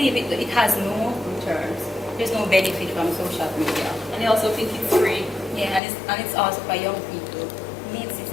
it has no returns. There's no benefit from social media. And they also think it's free. Yeah, and it's also for young people. It's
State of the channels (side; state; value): right; drops out; at 5.8 s